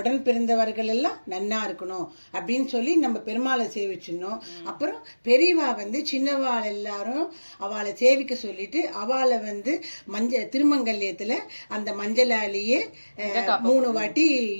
பிறந்தவர்கள் எல்லாம் நன்னா இருக்கணும் அப்படின்னு சொல்லி நம்ம பெருமாளை சேவிச்சிடணும். அப்புறம் பெரியவா வந்து சின்னவாள் எல்லாரும் அவளை சேவிக்க சொல்லிட்டு அவளை வந்து திருமங்கல்யத்தில் அந்த மஞ்சளாலேயே 3 வாட்டி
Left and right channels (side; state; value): both; inverted; correlation -1.00